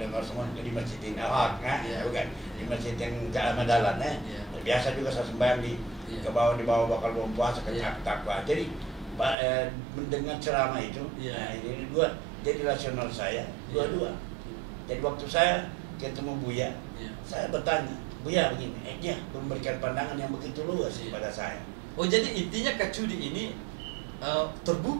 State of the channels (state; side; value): drops out; left; at 9.3 s